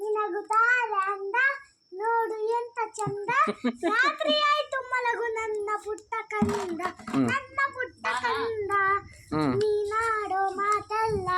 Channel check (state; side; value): identical; both; correlation 1.00